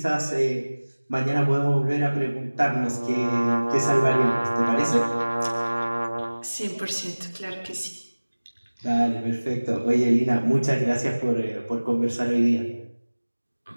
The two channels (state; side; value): inverted; both; correlation -1.00